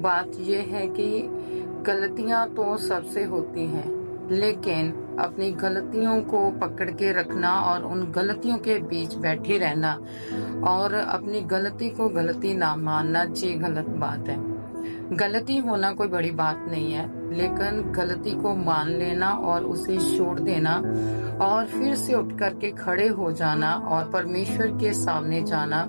ये है कि गलतियां तो सबसे होती हैं, लेकिन अपनी गलतियों को पकड़ के रखना और उन गलतियों के बीच बैठे रहना और अपनी गलती को गलती ना मानना ये गलत बात है। गलती होना कोई बड़ी बात नहीं है, लेकिन गलती को मान लेना और उसे छोड़ देना और फिर से उठ करके खड़े हो जाना और परमेश्वर के सामने जाना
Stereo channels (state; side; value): inverted; both; correlation -1.00